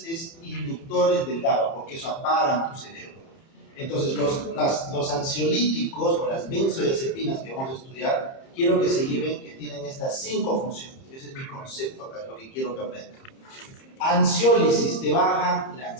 es inductores del GABA, porque eso apagan tu cerebro. Entonces, los ansiolíticos o las benzodiazepinas que vamos a estudiar, quiero que se lleven que tienen estas 5 funciones. Ese es mi concepto acá, es lo que quiero que aprendan. Ansiólisis, te baja la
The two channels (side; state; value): right; late; 30 ms